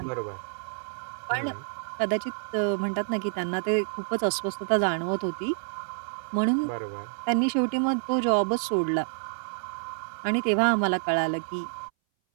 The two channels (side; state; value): left; silent; 59 dB below the other